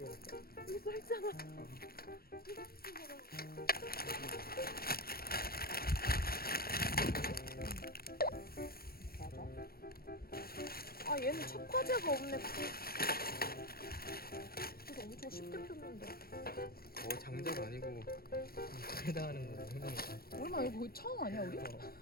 갈까? 여기 써있잖아. 이거 쓰지 마라. 얘는 착화제가 없네. 그래서 엄청 쉽게 폈는데. 장작 아니고 불에다 하는 거 생각나. 얼마 이거 거의 처음 아니야 우리?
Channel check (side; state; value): right; late; 0.44 ms